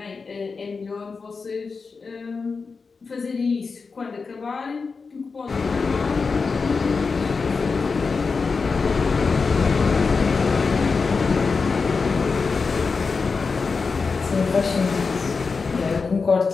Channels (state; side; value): quieter; right; 4.7 dB